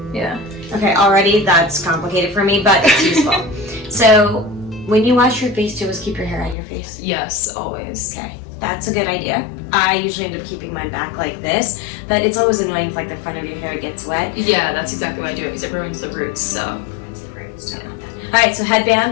Yeah. Okay, already that's complicated for me, but it's useful. So when you wash your face, do you always keep your hair on your face? Yes, always. Okay, that's a good idea. I usually end up keeping mine back like this, but it's always annoying if like the front of your hair gets wet. Yeah, that's exactly why I do it, because it ruins the roots, so. It's the roots, yeah. Alright, so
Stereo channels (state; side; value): drops out; right; at 6.6 s